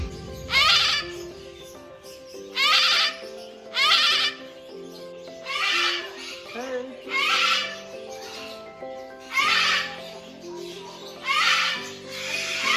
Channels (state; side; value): identical; both; correlation 1.00